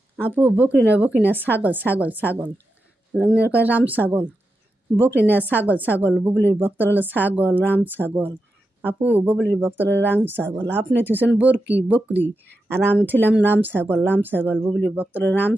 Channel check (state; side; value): normal; both; correlation 0.88